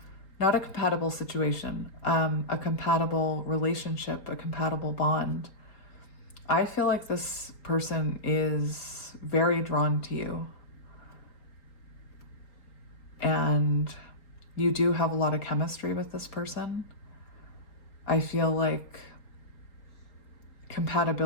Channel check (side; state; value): right; late; 4.1 ms